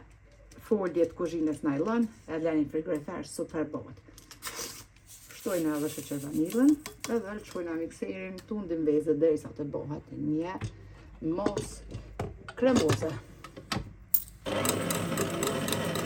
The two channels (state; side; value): identical; both; correlation 1.00